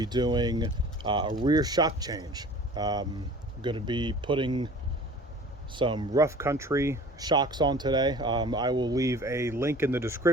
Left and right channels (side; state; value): both; normal; correlation 0.45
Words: doing a rear shock change. I'm going to be putting some rough country shocks on today. I will leave a link in the